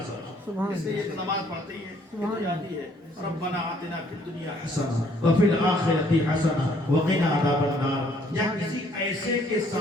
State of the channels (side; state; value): both; normal; correlation 0.64